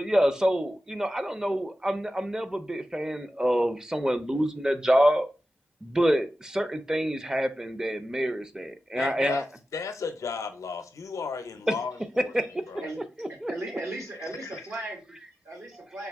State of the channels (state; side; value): normal; both; correlation 0.93